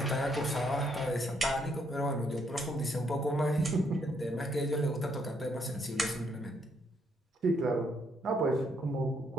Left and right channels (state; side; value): normal; both; correlation 0.72